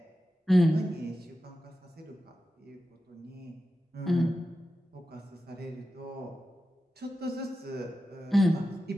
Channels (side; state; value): both; normal; correlation 0.92